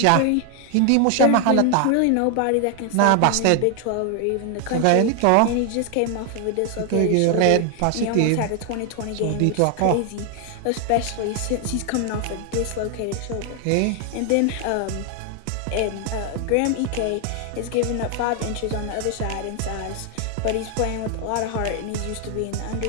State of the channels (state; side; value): different; both; correlation 0.00